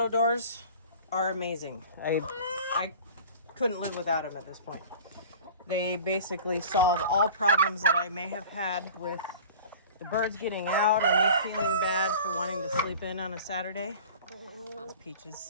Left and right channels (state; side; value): inverted; both; correlation -0.41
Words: doors are amazing. I couldn't live without them at this point. They basically solve all problems that I may have had with the birds getting out or me feeling bad for wanting to sleep in on a Saturday. That's